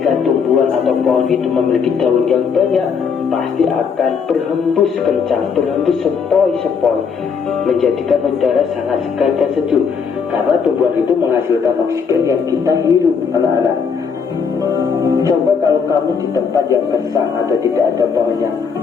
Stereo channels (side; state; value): right; quieter; 6.1 dB